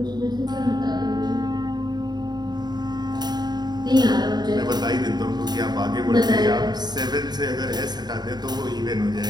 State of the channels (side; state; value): left; late; 0.20 ms